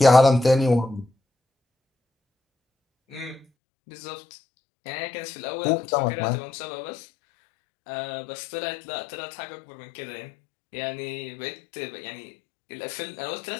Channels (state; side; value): drops out; right; at 3.5 s